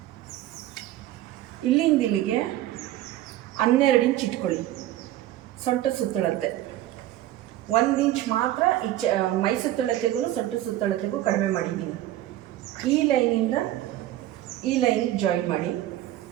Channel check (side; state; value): left; quieter; 14.0 dB